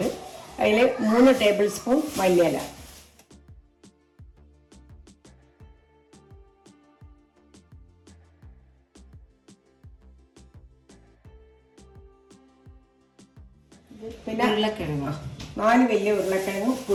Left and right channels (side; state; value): both; identical; correlation 1.00